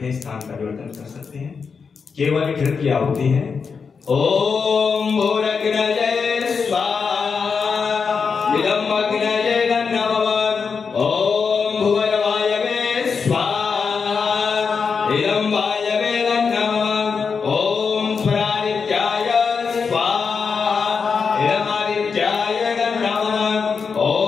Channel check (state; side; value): quieter; right; 5.6 dB